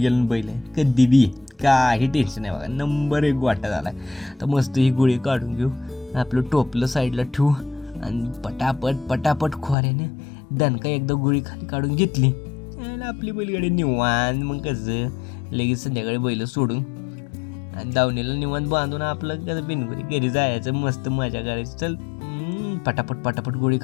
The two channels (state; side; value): drops out; right; at 9.8 s